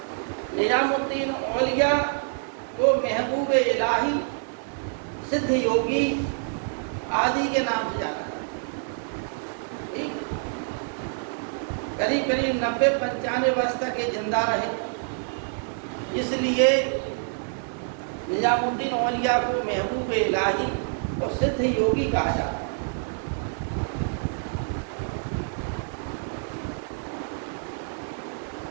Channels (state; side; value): silent; left; digital silence